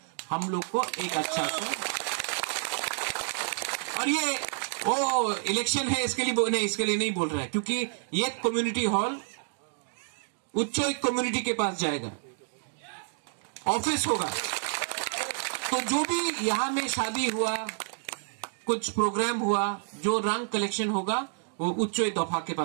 हम लोग को एक अच्छा सा। और ये वो इलेक्शन है इसके लिए नहीं बोल रहा है, क्योंकि ये कम्युनिटी हॉल उच्च कम्युनिटी के पास जाएगा, ऑफिस होगा। तो जो भी यहां में शादी हुआ, कुछ प्रोग्राम हुआ, जो रंग कलेक्शन होगा वो उच्च दफा के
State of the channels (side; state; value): left; silent; digital silence